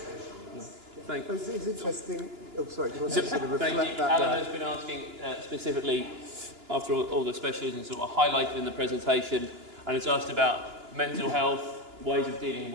Thank you. It's interesting. Oh, sorry. Do you want to sort of reflect that? Alan has been asking specifically, after all the specialisms that were highlighted in the presentation, and it's asked about mental health, ways of dealing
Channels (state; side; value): late; left; 2.9 ms